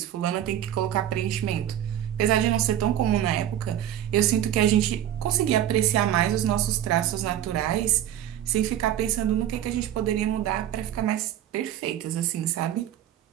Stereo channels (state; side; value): quieter; left; 11.3 dB